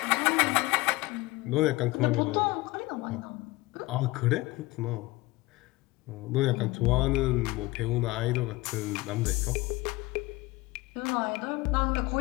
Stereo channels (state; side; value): quieter; right; 20.7 dB